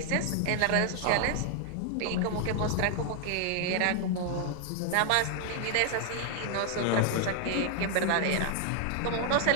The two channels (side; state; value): both; different; correlation 0.00